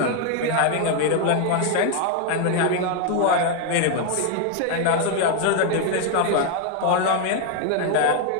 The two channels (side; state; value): both; different; correlation 0.00